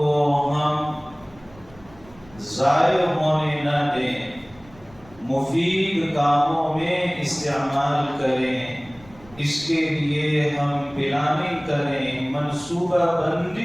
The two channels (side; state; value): right; noise; rumble, 24 dB below the sound